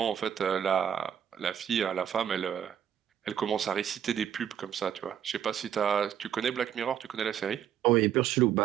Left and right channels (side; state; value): left; quieter; 9.4 dB